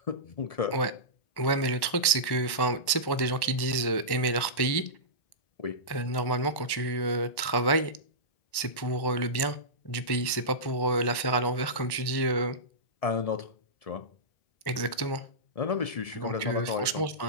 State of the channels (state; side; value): late; right; 1.1 ms